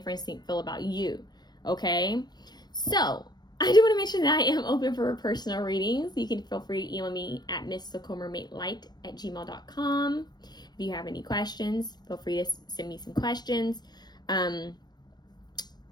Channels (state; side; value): late; right; 0.20 ms